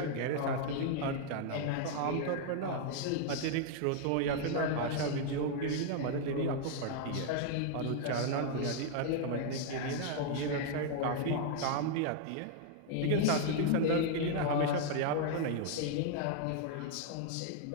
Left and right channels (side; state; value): both; different; correlation 0.00